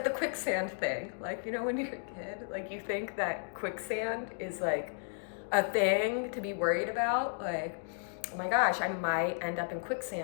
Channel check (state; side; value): silent; right; digital silence